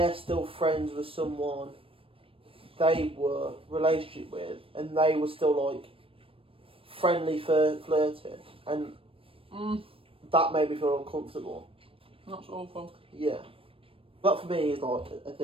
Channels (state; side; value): late; left; 0.27 ms